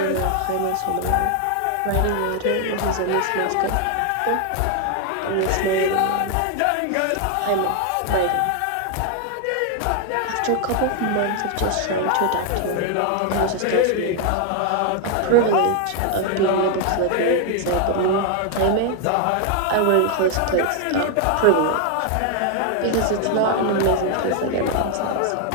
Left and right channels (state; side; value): different; both; correlation 0.00